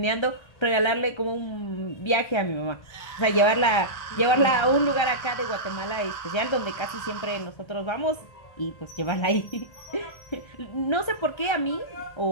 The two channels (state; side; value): late; right; 1.3 ms